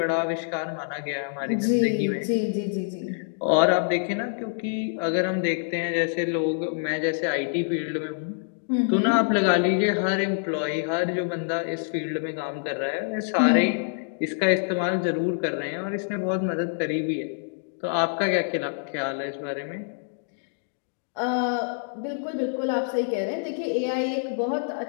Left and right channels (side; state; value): right; silent; digital silence